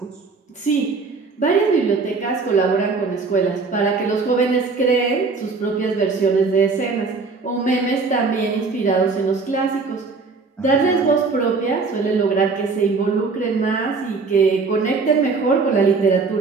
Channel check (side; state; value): left; quieter; 4.3 dB